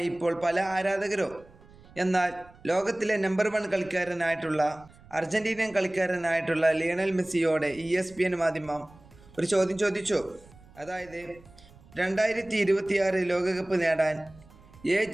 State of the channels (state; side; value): noise; right; rumble, 24 dB below the sound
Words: ഇപ്പോൾ പല ആരാധകരും. എന്നാൽ ലോകത്തിലെ നമ്പർ 1 കളിക്കാരനായിട്ടുള്ള അർജന്റീനിയൻ കളിക്കാരനായിട്ടുള്ള ലിയണൽ മെസ്സിയോട് ESPN മാധ്യമം ഒരു ചോദ്യം ചോദിച്ചു. അതായത് 2026 ലോകകപ്പ് നേടാൻ